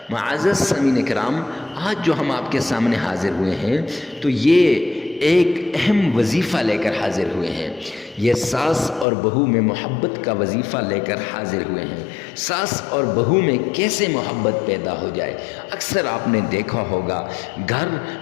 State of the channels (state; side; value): drops out; right; at 9.1 s